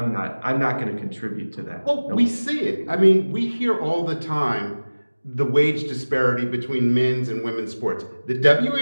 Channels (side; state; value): both; inverted; correlation -1.00